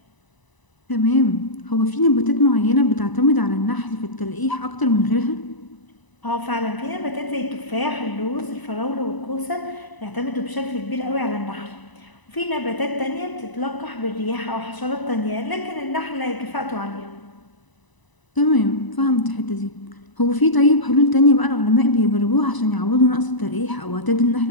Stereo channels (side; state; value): right; late; 1.0 ms